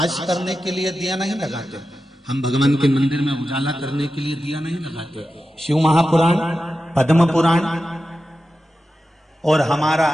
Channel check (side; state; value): both; normal; correlation 0.92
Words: करने के लिए दिया नहीं लगाते, हम भगवान के मंदिर में उजाला करने के लिए दिया नहीं लगाते। शिव महापुराण, पद्म पुराण और हमारा